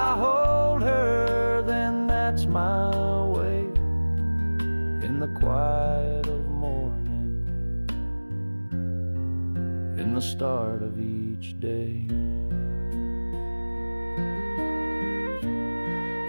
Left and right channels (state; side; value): inverted; both; correlation -1.00